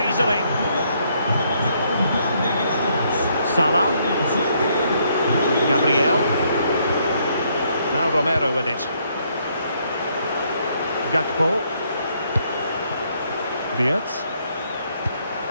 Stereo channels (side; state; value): both; inverted; correlation -0.70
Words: easily. Salah. Gabriel. Now Romero with it. Gakpo. Wirtz.